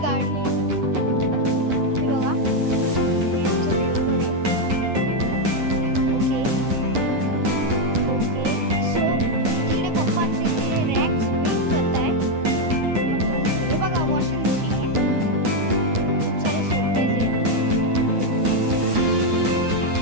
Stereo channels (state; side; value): late; left; 9.7 ms